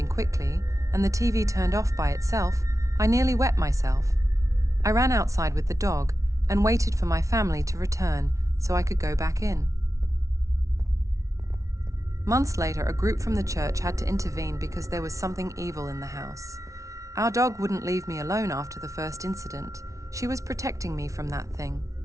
quickly and the TV turned off by itself, I nearly wet myself. I ran outside with the dog and waited for my family to return so I could go back in. Months later, a group from the church had to intervene because there was something evil in the house. Our dog wouldn't leave me alone after the first incident. She was protecting me from that thing.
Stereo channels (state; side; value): late; left; 0.15 ms